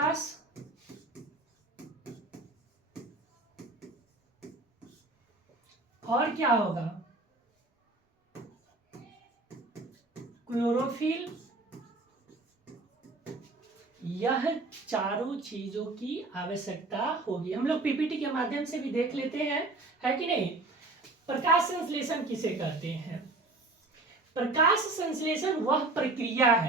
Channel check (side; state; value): left; quieter; 3.1 dB